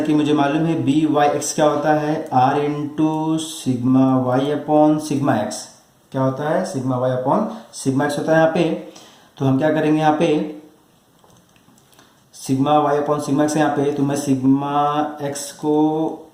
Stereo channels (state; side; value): identical; both; correlation 1.00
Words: कि मुझे मालूम है बी वाई एक्स क्या होता है, r into sigma y upon sigma x क्या होता है, sigma y upon sigma x होता है यहाँ पे। तो हम क्या करेंगे, यहाँ पे sigma y upon sigma x यहाँ पे, तो मैं सिग्मा एक्स को